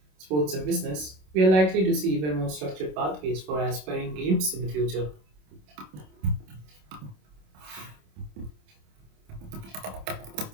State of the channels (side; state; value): left; late; 27 ms